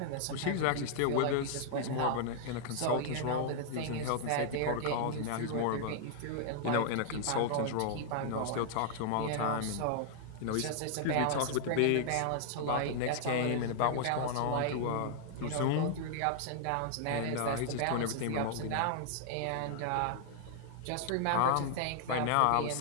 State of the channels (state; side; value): different; both; correlation -0.01